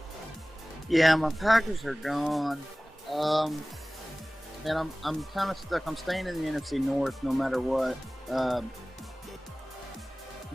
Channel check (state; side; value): normal; both; correlation 0.98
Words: Yeah, my Packers are gone. And I'm kind of stuck. I'm staying in the NFC North no matter what.